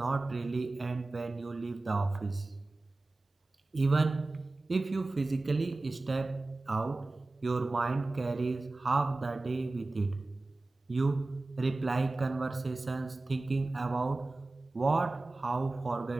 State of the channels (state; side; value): quieter; left; 3.1 dB